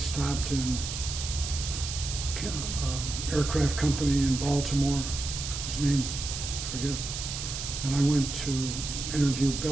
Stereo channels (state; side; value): noise; right; hiss, 5 dB below the sound